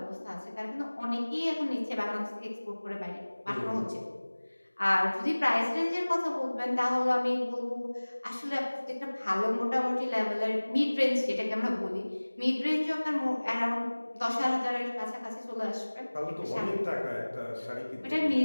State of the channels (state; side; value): inverted; both; correlation -1.00